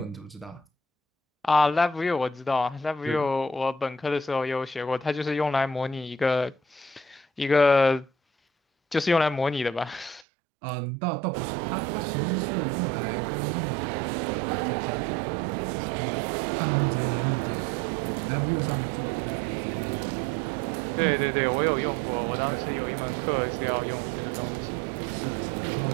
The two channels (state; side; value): drops out; left; at 10.2 s